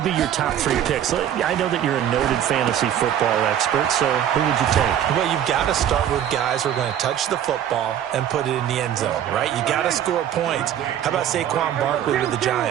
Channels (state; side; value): quieter; left; 10.3 dB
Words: be your top 3 picks? I know that you're a noted fantasy football expert, so who would you take? Well, you've got to start with guys who are going to touch the football and put it in the end zone, right? You got to score points. How about Saquon Barkley with the